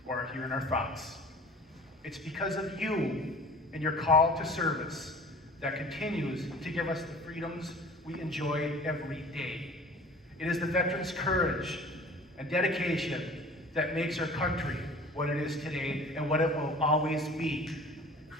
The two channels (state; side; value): normal; both; correlation 0.44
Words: who are here in our thoughts. It's because of you and your call to service that continues to give us the freedoms we enjoy every day. It is the veterans' courage and dedication that makes our country what it is today and what it will always be.